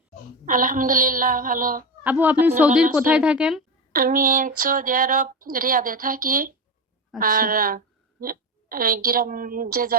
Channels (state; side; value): normal; both; correlation 0.19